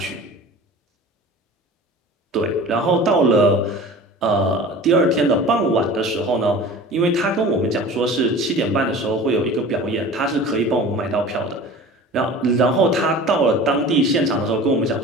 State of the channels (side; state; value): both; normal; correlation 0.40